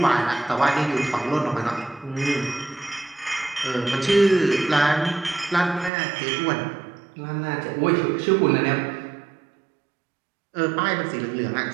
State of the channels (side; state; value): left; drops out; at 5.9 s